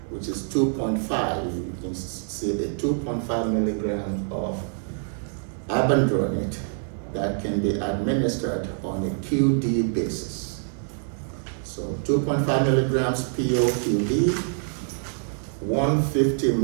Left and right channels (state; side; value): silent; left; digital silence